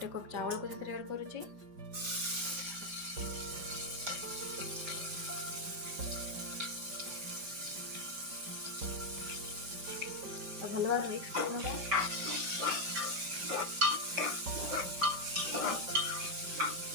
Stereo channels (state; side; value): late; left; 5.0 ms